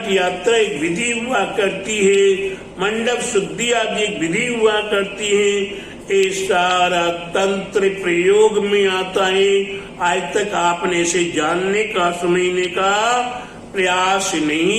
यात्रा एक विधि हुआ करती है, मंडप शुद्धि आदि एक विधि हुआ करती है। ये सारा तंत्र प्रयोग में आता है। आज तक आपने इसे जानने का, समझने का प्रयास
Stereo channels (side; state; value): both; identical; correlation 1.00